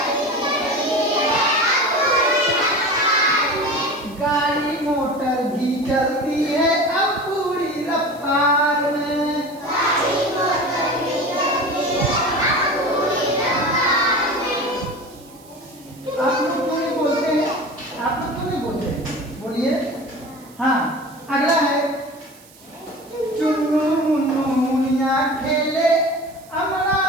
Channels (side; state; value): right; noise; hiss, 25 dB below the sound